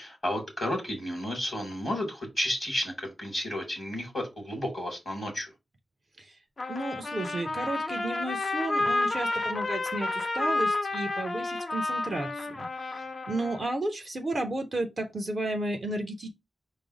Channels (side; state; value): both; normal; correlation 0.89